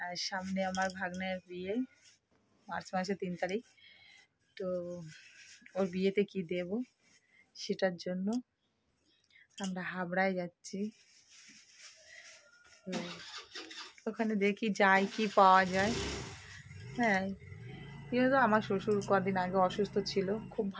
সামনে আমার ভাগ্নের বিয়ে, মার্চ মাসে 3 তারিখ। তো ওর বিয়েতে কি দেব সেটার জন্য আমরা হাবড়ায় যাচ্ছি। তো ওখানে দেখি যাই কি পাওয়া যায়। হ্যাঁ, কিন্তু আমার শ্বশুর কদিন আগে অসুস্থ ছিল, খুব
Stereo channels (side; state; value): both; identical; correlation 1.00